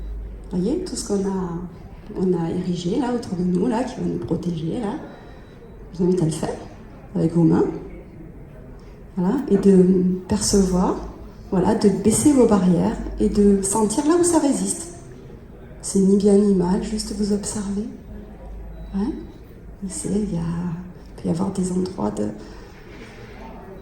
Vous voyez, tout ce qu'on a érigé, là, autour de nous, là, qui va nous protéger, là. Je vous invite à le faire, avec vos mains. Voilà, et de percevoir, voilà, de baisser vos barrières et de sentir là où ça résiste. C'est ni bien ni mal, juste vous observez. Ouais. Il peut y avoir des endroits de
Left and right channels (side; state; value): both; identical; correlation 1.00